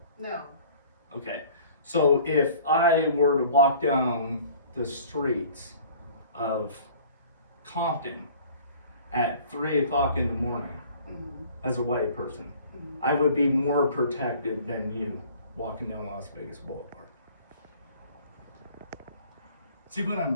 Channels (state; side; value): inverted; both; correlation -0.50